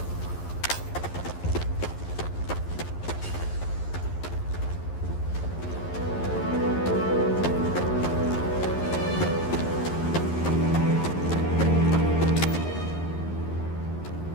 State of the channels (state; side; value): late; right; 11 ms